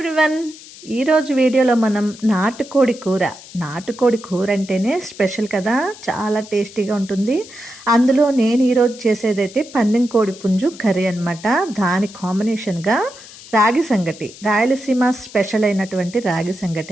ఈరోజు వీడియోలో మనం నాటుకోడి కూర అంటేనే స్పెషల్ కదా, చాలా టేస్టీగా ఉంటుంది. అందులో నేను ఈరోజు చేసేదైతే పందెం కోడి పుంజు కర్రీ అనమాట. దాని కాంబినేషన్గా రాగి సంగటి, రాయలసీమ స్పెషల్ అయినటువంటి రాగి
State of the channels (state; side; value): noise; left; hiss, 18 dB below the sound